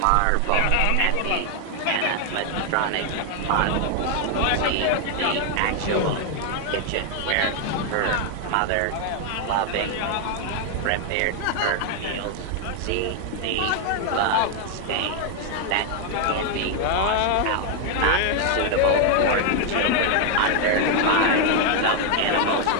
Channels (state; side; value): different; both; correlation 0.00